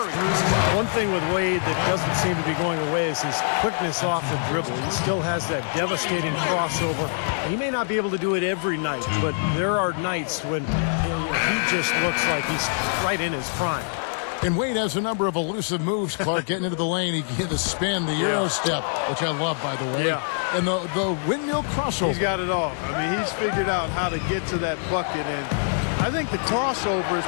One thing with Wade that doesn't seem to be going away is his quickness off the dribble. He still has that devastating crossover. He may not be able to do it every night, but there are nights when he just looks like he's right in his prime. And Wade has a number of elusive moves, Clark, getting into the lane. He get the spin, the Euro step, which I love, by the way. Yeah. And the windmill crossover. He's got it all. He's figured out how to get to that bucket, and I think the crossover is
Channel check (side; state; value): right; silent; digital silence